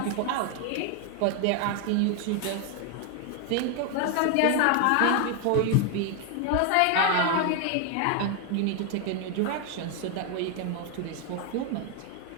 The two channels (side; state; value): both; different; correlation 0.01